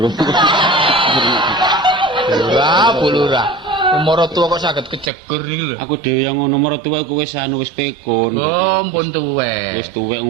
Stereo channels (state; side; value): drops out; left; at 5.1 s